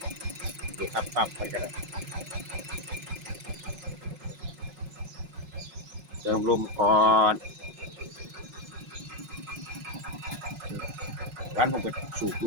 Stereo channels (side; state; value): left; late; 5.4 ms